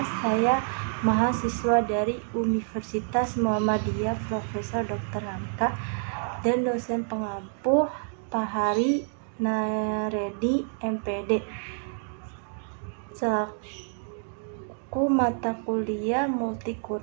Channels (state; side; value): silent; left; 57 dB below the other